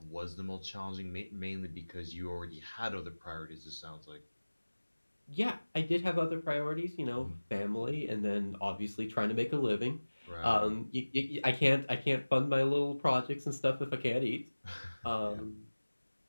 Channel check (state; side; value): inverted; both; correlation -1.00